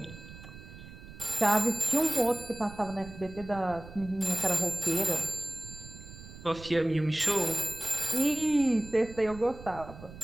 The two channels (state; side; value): noise; right; rumble, 16 dB below the sound